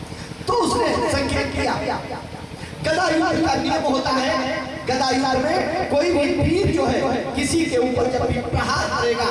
तो उसने संकेत किया। गदा युद्ध का नियम होता है, गदा युद्ध में कोई भी वीर जो है किसी के ऊपर जब भी प्रहार करेगा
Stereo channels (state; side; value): identical; both; correlation 1.00